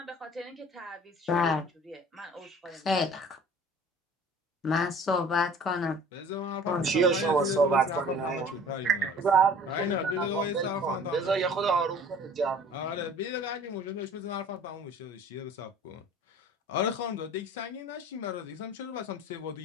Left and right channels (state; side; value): normal; both; correlation 0.48